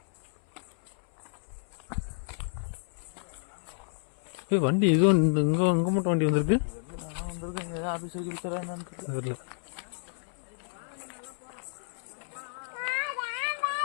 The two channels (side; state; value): right; silent; 57 dB below the other